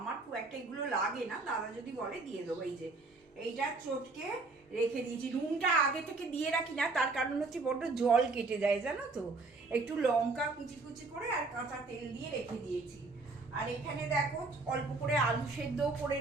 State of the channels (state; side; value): quieter; left; 3.6 dB